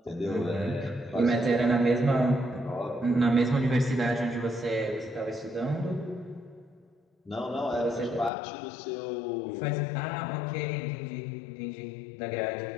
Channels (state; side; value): drops out; right; at 8.3 s